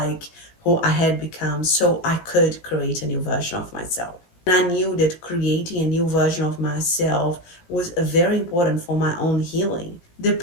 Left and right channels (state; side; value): late; right; 17 ms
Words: who I had become, so I could create a new version of myself. And I knew that creating a new version of myself was very important for my own healing. The